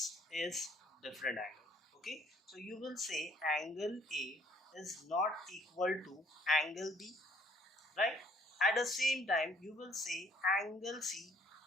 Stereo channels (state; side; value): normal; both; correlation 0.61